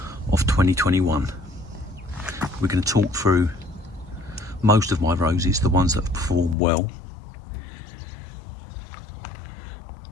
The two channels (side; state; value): right; drops out; at 6.6 s